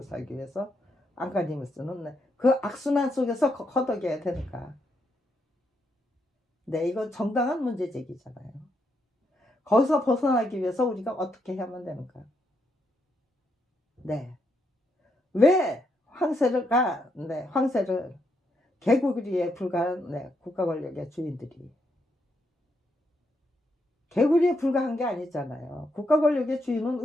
살기 위해서 안간힘을 쓰는 그 악순환 속에서 허덕여야 되니까. 이건 정당한 문제 제기잖아요. 거기서 벗어나기 위해서 우리가 어떻게 해야만 되는가. 왜 황새를 개구리에 불과한 국가 권력의 주인들이 개구리에 불과한 게 아니잖아요. 국가 권력의 주인은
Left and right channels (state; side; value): normal; both; correlation 0.78